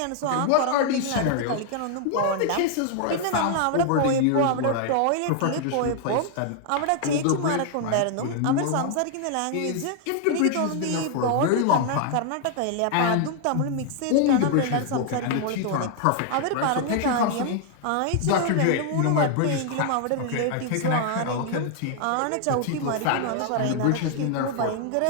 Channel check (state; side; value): different; both; correlation 0.00